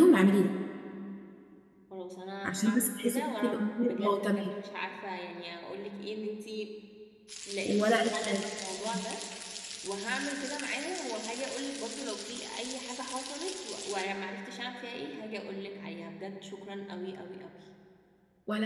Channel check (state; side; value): identical; both; correlation 1.00